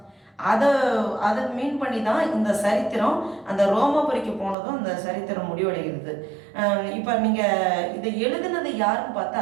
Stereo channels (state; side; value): drops out; left; at 4.5 s